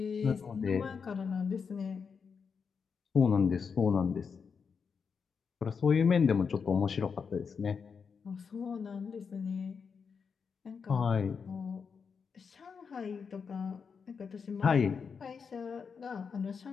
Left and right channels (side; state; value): right; quieter; 5.9 dB